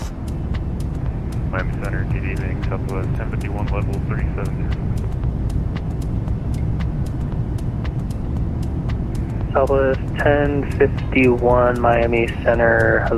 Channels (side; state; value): both; identical; correlation 1.00